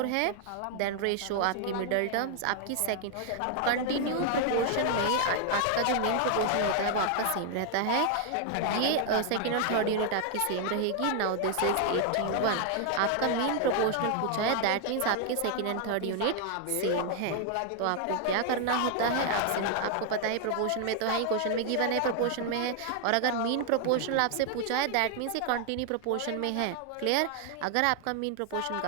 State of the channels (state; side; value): different; both; correlation 0.00